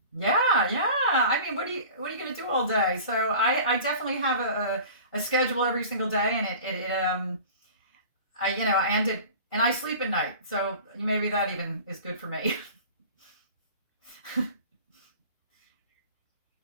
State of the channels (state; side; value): inverted; both; correlation -0.40